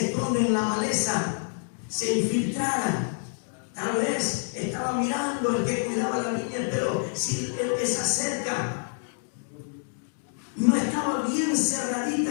esconden en la maleza, se infiltraran. Tal vez estaba mirando el que cuidaba la viña, pero si esa cerca no estaba bien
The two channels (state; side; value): silent; right; digital silence